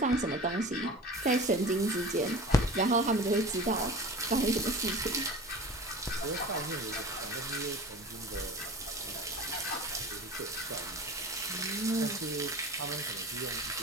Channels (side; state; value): both; normal; correlation 0.37